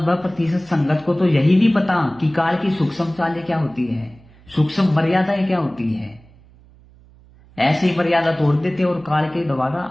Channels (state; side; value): noise; right; hum, 26 dB below the sound